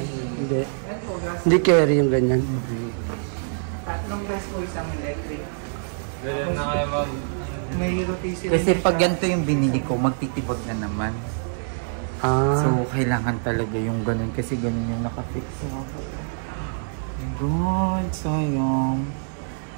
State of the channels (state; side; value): silent; left; digital silence